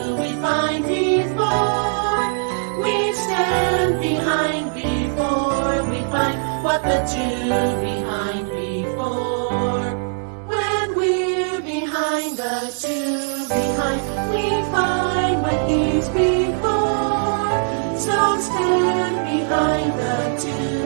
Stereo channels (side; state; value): left; silent; 59 dB below the other